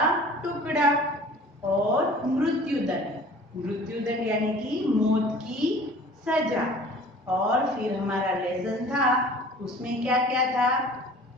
टुकड़ा। और मृत्युदंड। मृत्युदंड यानी कि मौत की सजा। और फिर हमारा लेसन था, उसमें क्या क्या था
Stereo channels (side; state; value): both; normal; correlation 0.46